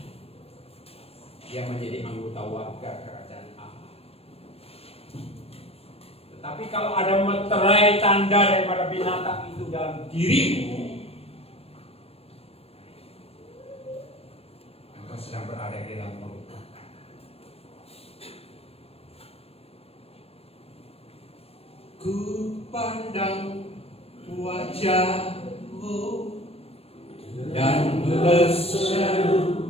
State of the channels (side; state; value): right; late; 0.29 ms